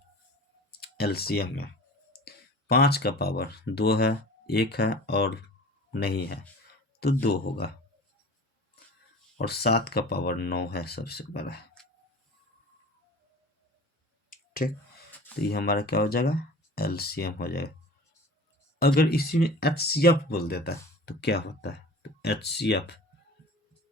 एलसीएम में 5 का पावर 2 है, 1 है और नहीं है, तो 2 होगा। और 7 का पावर 9 है, सबसे बड़ा है। ठीक, तो ये हमारा क्या हो जाएगा, एलसीएम हो जाएगा। अगर इसी में एचसीएफ बोल देता है तो क्या होता है, तो एचसीएफ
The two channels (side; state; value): both; normal; correlation 0.40